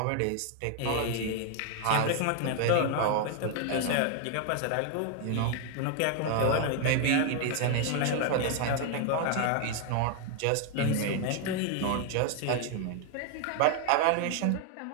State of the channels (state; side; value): different; both; correlation 0.00